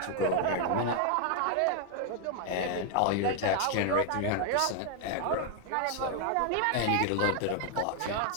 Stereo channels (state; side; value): different; both; correlation 0.00